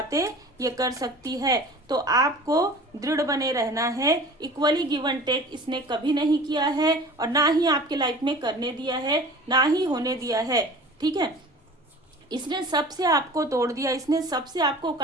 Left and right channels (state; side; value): normal; both; correlation 0.41